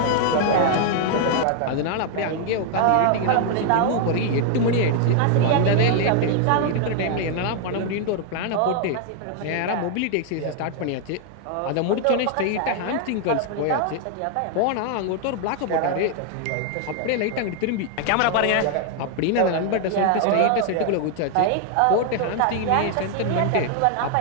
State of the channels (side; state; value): both; different; correlation 0.00